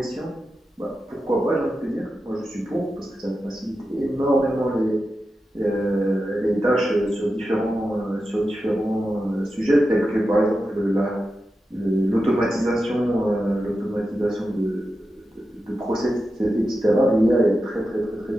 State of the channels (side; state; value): both; normal; correlation 0.91